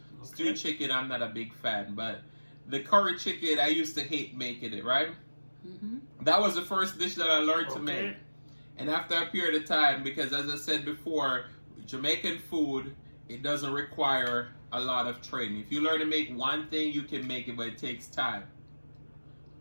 stewed chicken I'm not a big fan. But the curry chicken, I used to hate making it, right? That was the first dish that I learned to make. And after a period of time, because as I said before, Jamaican food, it doesn't require a lot of training. If you learn to make one thing, you can make it, but it takes time.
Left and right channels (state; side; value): inverted; both; correlation -1.00